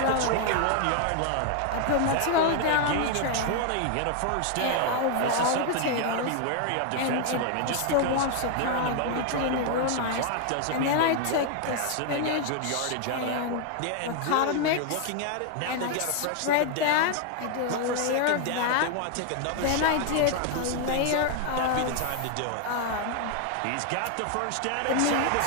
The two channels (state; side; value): different; both; correlation 0.00